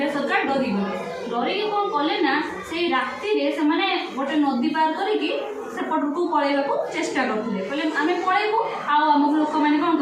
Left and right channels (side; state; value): both; identical; correlation 1.00